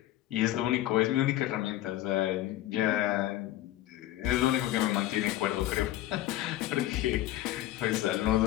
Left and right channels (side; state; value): right; quieter; 14.6 dB